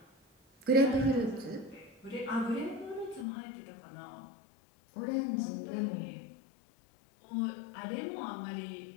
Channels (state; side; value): drops out; right; at 3.2 s